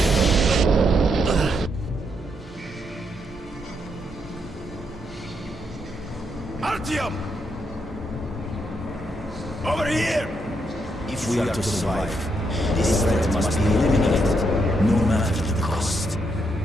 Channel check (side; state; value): both; normal; correlation 0.78